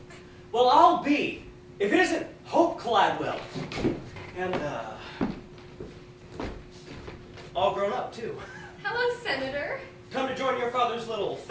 Well, I'll be, if it isn't Hope Gladwell. And, all grown up, too. Hello, Senator. Come to join your father's little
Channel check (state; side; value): identical; both; correlation 1.00